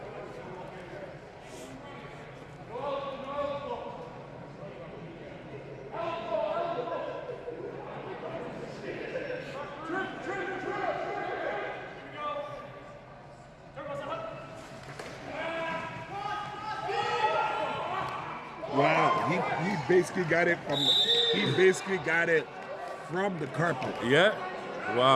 Wow, he basically got it from the carpet. Yeah.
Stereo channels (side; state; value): both; identical; correlation 1.00